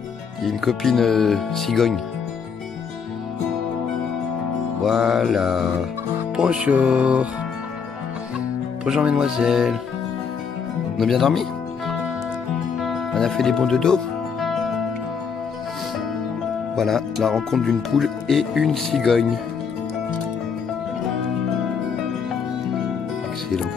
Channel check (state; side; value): quieter; right; 6.2 dB